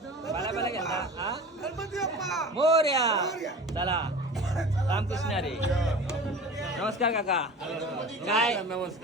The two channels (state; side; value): normal; both; correlation 0.37